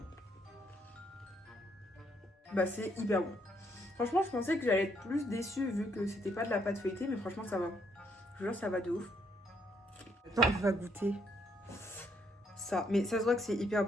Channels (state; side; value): normal; both; correlation 0.72